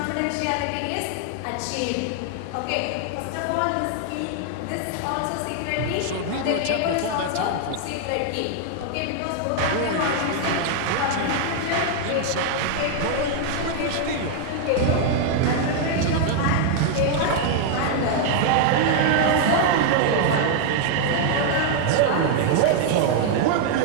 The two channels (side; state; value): both; different; correlation 0.00